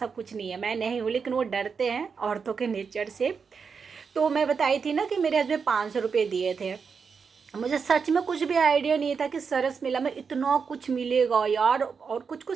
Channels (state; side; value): quieter; left; 5.7 dB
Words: कुछ नहीं है। मैं नहीं हूँ, लेकिन वो डरते हैं औरतों के नेचर से। तो मैं बताई थी ना कि मेरे हस्बैंड 500 रुपये दिए थे। मुझे सच में कुछ भी आइडिया नहीं था कि सरस मेला में इतना कुछ मिलेगा यार, और कुछ